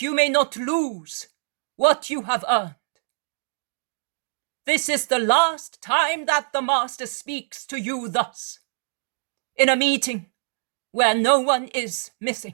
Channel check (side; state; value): left; silent; digital silence